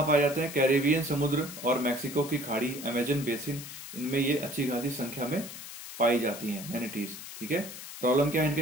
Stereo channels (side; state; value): left; noise; hiss, 11 dB below the sound